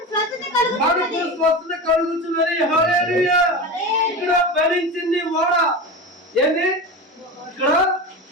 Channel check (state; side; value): normal; both; correlation 0.25